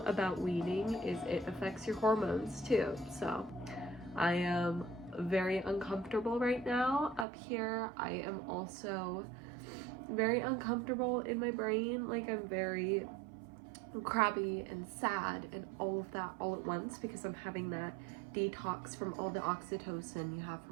weaning is it affects your hormones too. So I am very uncomfortable right now up here. I am also very uncomfortable in my brain. Like I'm very crabby and sad and all of that all at once because I'm having that detox from all the oxytocin you have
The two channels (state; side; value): drops out; left; at 7.2 s